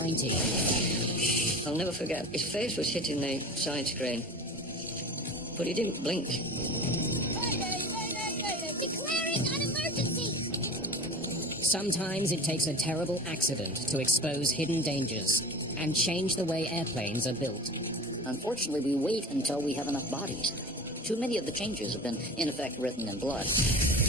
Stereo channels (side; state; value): both; normal; correlation 0.35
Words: I'll never forget. His face was hitting the side screen, but he didn't blink. Mayday, mayday, mayday. Declaring an emergency. Sometimes it takes a terrible accident to expose hidden dangers and change the way airplanes are built. Unfortunately, we wait until we have enough bodies. Too many of the changes have been, in effect, written in blood.